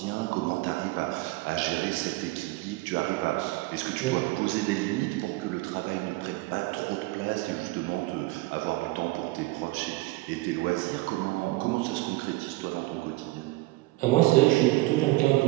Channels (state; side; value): quieter; left; 20.6 dB